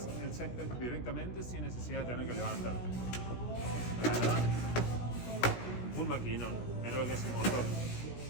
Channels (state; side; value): late; right; 16 ms